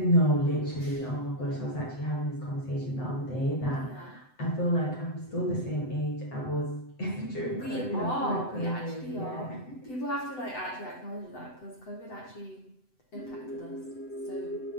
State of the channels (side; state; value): right; late; 7.9 ms